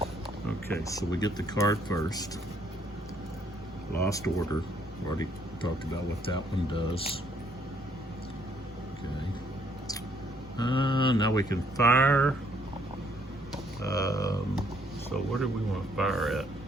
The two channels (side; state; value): right; noise; hum, 23 dB below the sound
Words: Okay, so we get the card first. Lost order. Already talked about what that one does. Okay. Now we can fire. So where do we want to fire at?